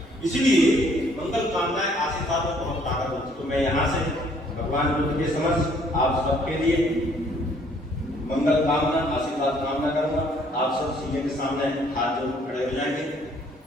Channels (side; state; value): both; normal; correlation 0.62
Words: इसलिए मंगल कामनाएं आशीर्वाद में बहुत ताकत होती है। तो मैं यहाँ से भगवान बुद्ध के समक्ष आप सबके लिए मंगल कामना, आशीर्वाद कामना करूंगा। आप सब सीधे के सामने हाथ जोड़ खड़े हो जाएंगे।